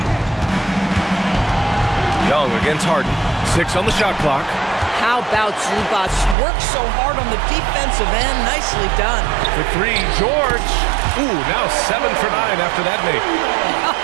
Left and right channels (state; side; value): drops out; left; at 6.4 s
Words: Young against Harden. 6 on the shot clock. How about Zubac? Works so hard on the defensive end. Nicely done. For 3, George. Ooh, now 7 for 9 after that make.